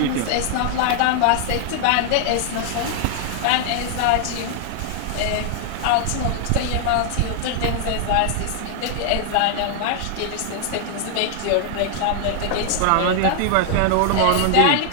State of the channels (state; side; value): different; both; correlation 0.00